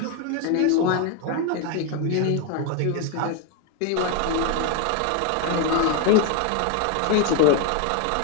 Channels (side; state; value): both; different; correlation 0.01